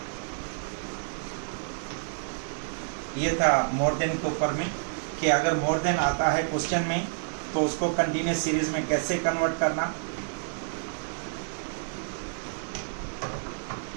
ये था मोर देन के ऊपर में कि अगर मोर देन आता है क्वेश्चन में तो उसको कंटिन्यूस सीरीज में कैसे कन्वर्ट करना।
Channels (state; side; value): silent; left; digital silence